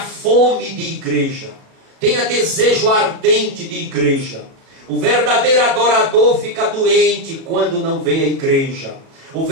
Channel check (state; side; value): late; left; 36 ms